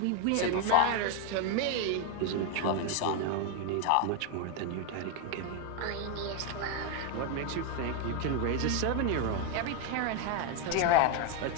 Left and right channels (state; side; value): different; both; correlation 0.01